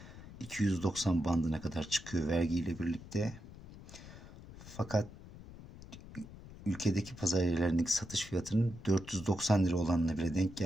290 bandına kadar çıkıyor vergiyle birlikte. Fakat ülkedeki pazar yerlerindeki satış fiyatının 490 lira olanına bile denk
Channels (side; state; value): left; noise; rumble, 16 dB below the sound